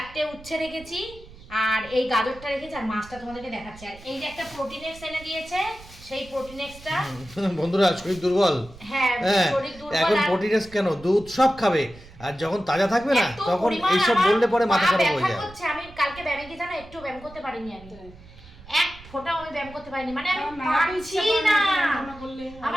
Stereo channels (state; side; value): noise; right; rumble, 20 dB below the sound